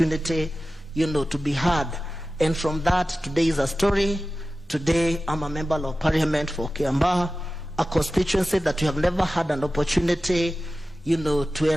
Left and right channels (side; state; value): both; normal; correlation 0.95